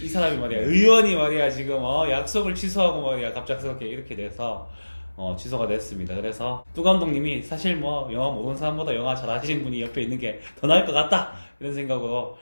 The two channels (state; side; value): inverted; both; correlation -1.00